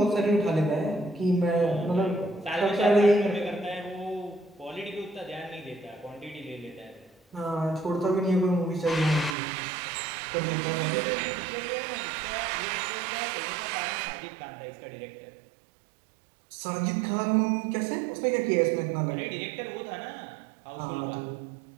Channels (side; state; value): left; drops out; at 9.3 s